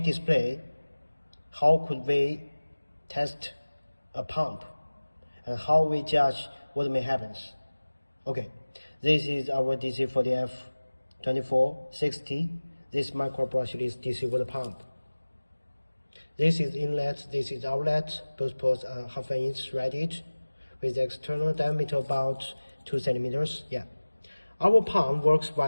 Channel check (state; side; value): inverted; both; correlation -1.00